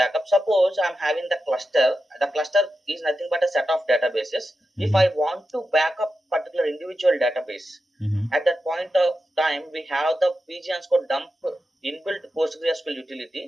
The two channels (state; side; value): normal; both; correlation 0.90